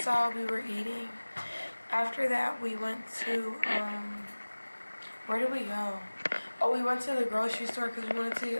saw, we were eating. After that, we went to, where did we go? Oh, we went to the grocery store because we wanted to get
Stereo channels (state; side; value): inverted; both; correlation -1.00